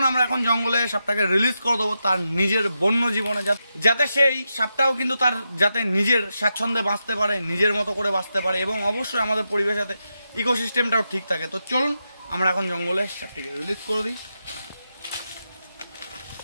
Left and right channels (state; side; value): inverted; both; correlation -0.87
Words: আমরা এখন জঙ্গলে সাপটাকে রিলিজ করে দেবো তার নিজের বন্য জীবনে, যাতে সেই সাপটাও কিন্তু তার যাতে নিজের স্বাচ্ছন্দ্যে বাঁচতে পারে, নিজের মতো করে বাঁচতে পারে এবং অবশ্যই আমাদের পরিবেশ যাতে ইকোসিস্টেমটাও ঠিক থাকে। তো চলুন আমরা এখন জঙ্গলে সাপটাকে রিলিজ করে দিই।